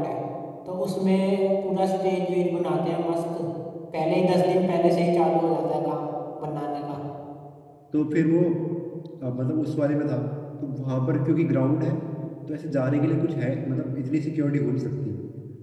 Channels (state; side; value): identical; both; correlation 1.00